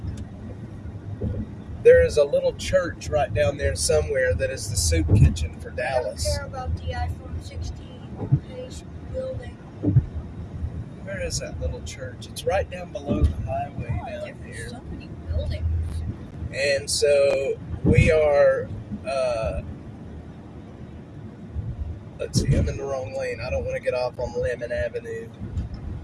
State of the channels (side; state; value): both; identical; correlation 1.00